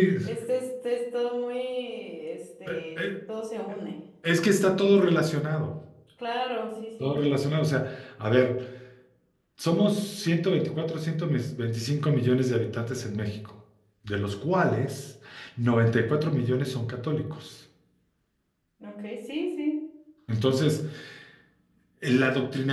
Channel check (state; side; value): identical; both; correlation 1.00